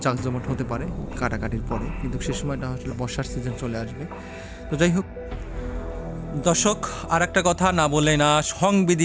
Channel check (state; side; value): identical; both; correlation 1.00